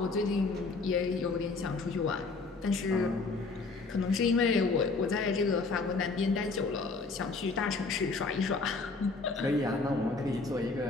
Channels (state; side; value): quieter; right; 3.9 dB